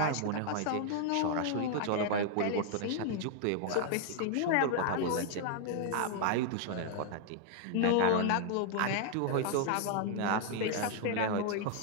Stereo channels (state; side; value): different; both; correlation 0.00